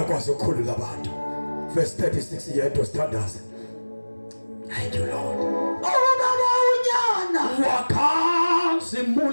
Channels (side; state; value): both; inverted; correlation -1.00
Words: okwazi ukukhulula abantu. Verse 36 yedwa sithandaze. Thank you, Lord. Ubaba unyana.